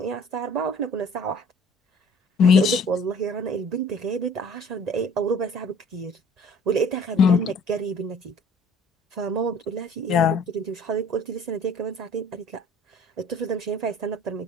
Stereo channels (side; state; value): both; normal; correlation 0.52